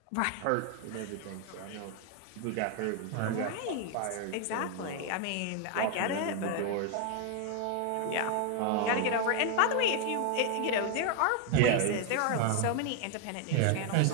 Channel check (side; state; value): both; different; correlation 0.00